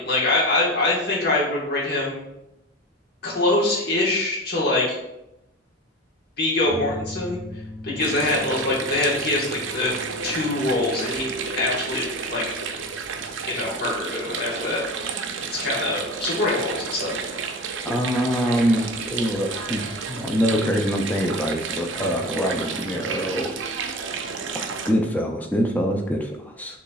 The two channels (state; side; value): normal; both; correlation 0.31